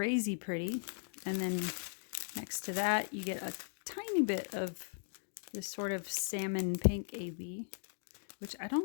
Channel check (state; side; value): silent; right; digital silence